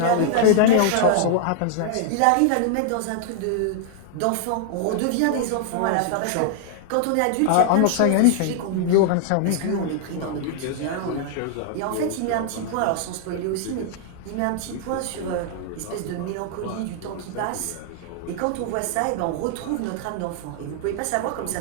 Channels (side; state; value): both; different; correlation -0.01